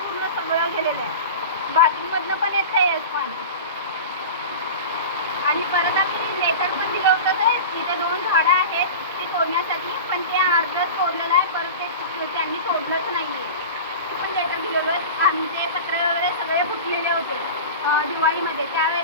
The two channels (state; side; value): inverted; both; correlation -0.31